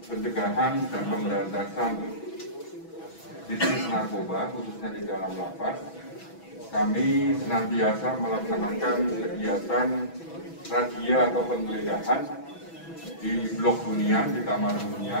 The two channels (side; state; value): right; late; 6.1 ms